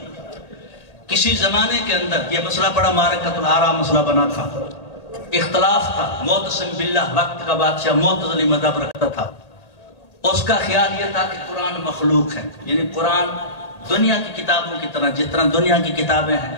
کسی زمانے کے اندر یہ مسئلہ بڑا معرکۃ الآراء مسئلہ بنا تھا، اختلاف تھا. معتصم باللہ وقت کا بادشاہ معتزلی مذہب رکھتا تھا، اس کا خیال یہ تھا کہ قرآن مخلوق ہے، یعنی قرآن دنیا کی کتابوں کی طرح، جس طرح دنیا کی کتابیں ہیں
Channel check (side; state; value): right; late; 1.9 ms